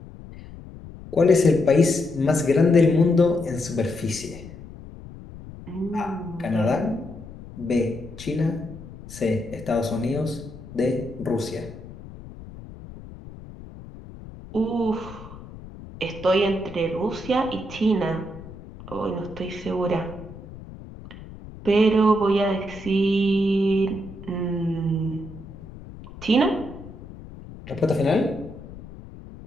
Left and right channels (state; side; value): noise; left; rumble, 16 dB below the sound